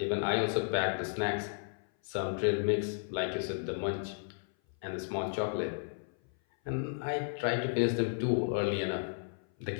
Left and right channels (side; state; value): right; silent; 55 dB below the other